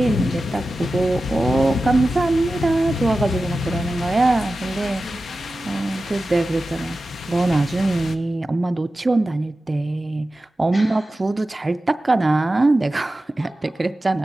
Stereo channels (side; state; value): both; normal; correlation 0.94